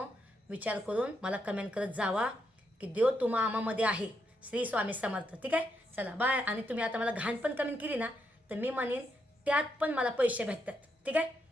विचार करून मला कमेंट करत जावा की देव तुम्हा आमामध्ये आहे श्री स्वामी समर्थ ठीक आहे चला बाय आणि तुम्ही आता मला घाण पण कमेंट केली ना तर मी म्हणेन त्यात पण मला पैसे भेटतात ठीक आहे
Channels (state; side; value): normal; both; correlation 0.80